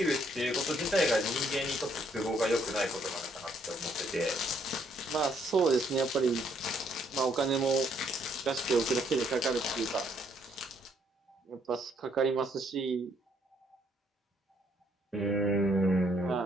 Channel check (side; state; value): both; normal; correlation 0.69